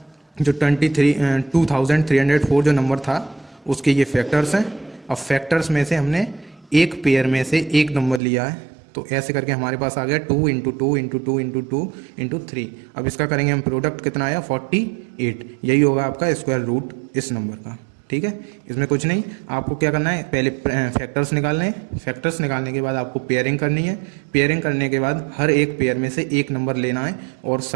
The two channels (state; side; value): drops out; left; at 8.2 s